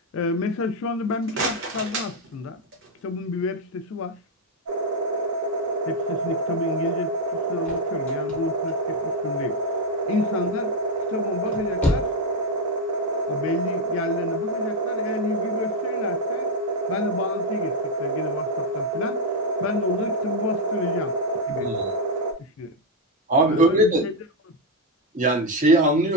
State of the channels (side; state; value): both; normal; correlation 0.02